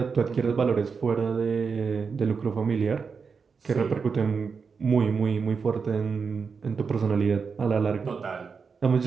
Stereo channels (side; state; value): left; quieter; 5.5 dB